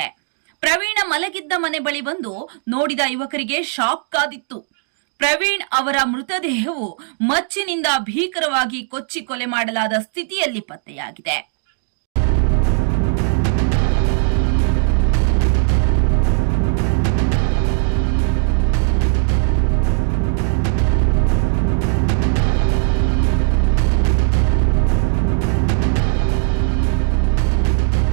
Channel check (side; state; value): left; silent; digital silence